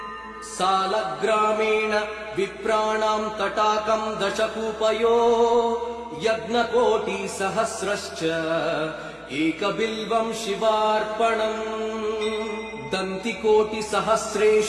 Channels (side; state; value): both; identical; correlation 1.00